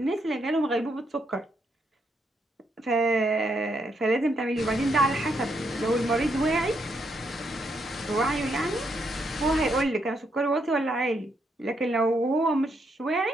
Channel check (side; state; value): both; normal; correlation 0.77